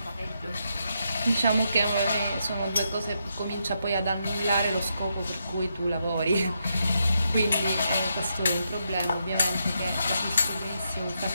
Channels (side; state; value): both; inverted; correlation -0.81